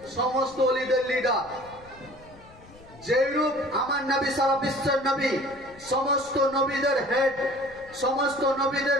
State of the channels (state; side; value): noise; left; rumble, 23 dB below the sound